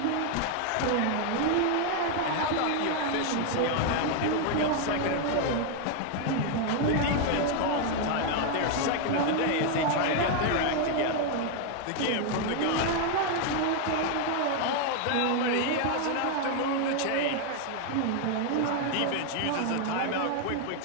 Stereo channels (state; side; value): different; both; correlation 0.01